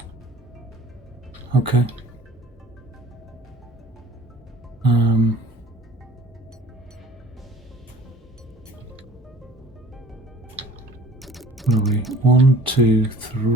Okay. What are we? 1, 2,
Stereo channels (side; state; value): both; normal; correlation 0.48